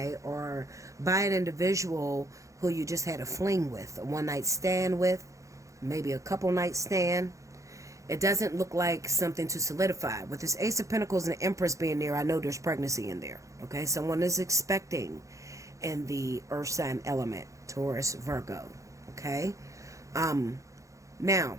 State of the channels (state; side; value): late; left; 0.15 ms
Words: Or by an individual who you just had a fling with, a one-night stand with, maybe a couple night stand. It doesn't look like something to solidify. With this Ace of Pentacles and the Empress being there, I know there's pregnancy in there, okay? Someone is expecting in the earth sign element, Taurus, Virgo, okay? Now,